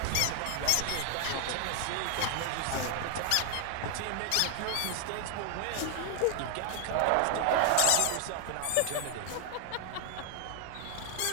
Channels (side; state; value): both; different; correlation 0.01